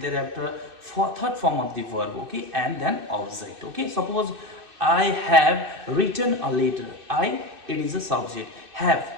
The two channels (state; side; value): late; left; 2.6 ms